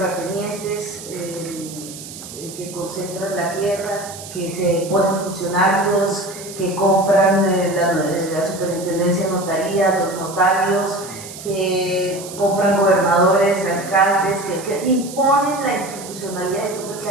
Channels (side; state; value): right; noise; hiss, 13 dB below the sound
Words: que concentran la tierra, que se ponen funcionarios, que compran la superintendencia de notaría, los notarios, que compran gobernadores, alcaldes, que imponen la institucionalidad. Esto fue